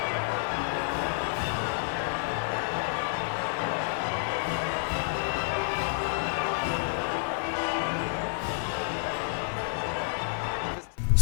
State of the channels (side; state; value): right; silent; digital silence